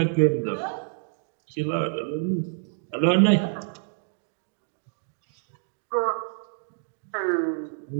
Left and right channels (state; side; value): silent; left; digital silence